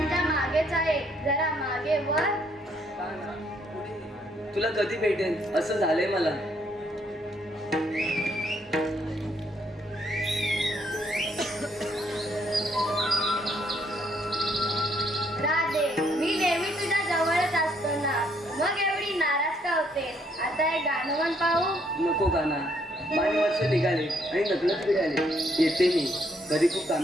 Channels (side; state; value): both; normal; correlation 0.70